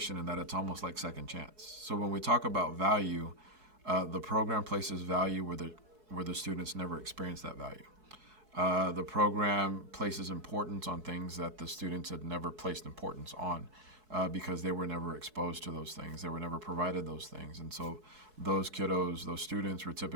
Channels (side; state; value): left; late; 4.7 ms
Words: in that it's almost like second chance. So when we talk about value, the program places value where the students never experience that value. The program places importance on things that the students had never placed importance on because they were never exposed to those things. They were never provided those things. And so those kiddos, those students were